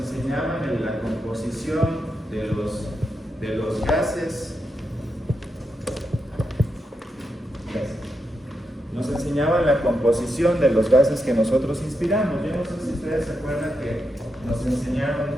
la composición de los gases. Nos enseñaban la composición de los gases que nosotros inspiramos. Yo no sé si ustedes se acuerdan que nos enseñaron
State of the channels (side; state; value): both; normal; correlation 0.85